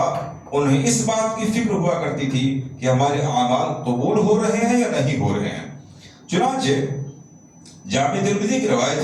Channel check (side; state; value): both; identical; correlation 1.00